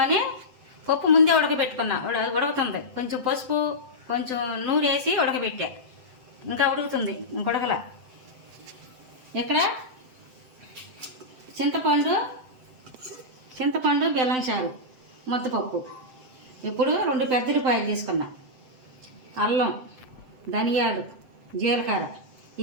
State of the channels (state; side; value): late; left; 7.8 ms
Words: పప్పు ముందే ఉడకబెట్టుకున్నా. ఉడుకుతుంది. కొంచెం పసుపు, కొంచెం నూనె వేసి ఉడకబెట్టా. ఇంకా ఉడుకుతుంది, ఇంకొడకల. ఇక్కడ చింతపండు బెల్లం చారు, ముద్దపప్పు. ఇప్పుడు 2 పెద్ద ఉల్లిపాయలు తీసుకున్నా, అల్లం, ధనియాలు, జీలకర్ర